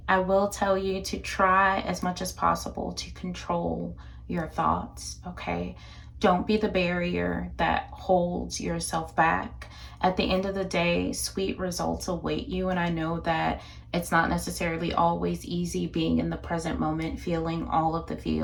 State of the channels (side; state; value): both; identical; correlation 1.00